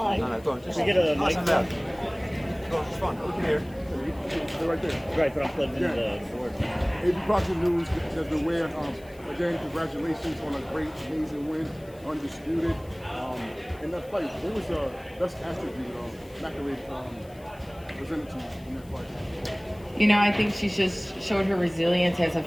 No, go on. Just get a mic. Go on, it's fine. We can hear it. They're right there. Right, but I'm plugged into the board. AB Boxing News, Desmond Weir, again, congratulations on a great, amazing win, undisputed. In that fight, what was the best attribute McAlee presented to you in that fight? You know, I think she just showed her resilience as a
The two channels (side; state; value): left; noise; hiss, 26 dB below the sound